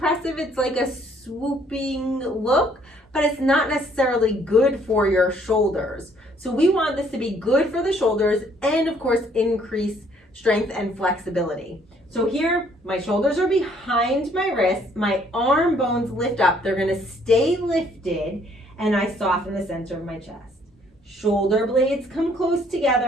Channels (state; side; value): normal; both; correlation 0.64